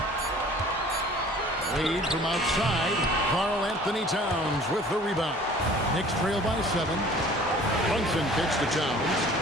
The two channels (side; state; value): both; normal; correlation 0.49